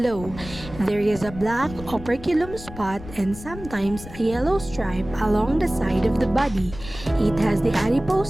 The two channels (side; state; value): left; noise; rumble, 14 dB below the sound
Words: There is a black operculum spot and sometimes a yellow stripe along the side of the body. It has the